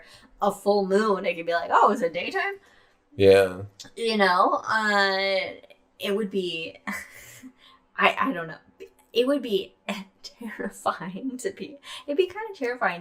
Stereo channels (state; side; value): identical; both; correlation 1.00